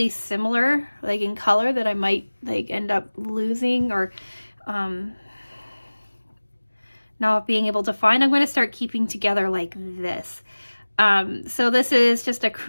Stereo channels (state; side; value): inverted; both; correlation -1.00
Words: similar, like in color, that I might like end up losing or not being able to find, I'm going to start keeping together like this. So this is just a